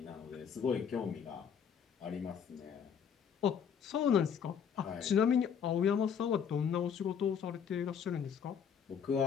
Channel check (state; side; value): quieter; right; 7.5 dB